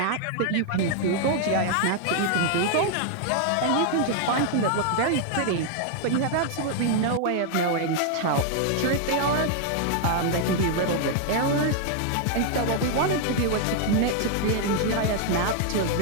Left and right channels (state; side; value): different; both; correlation 0.00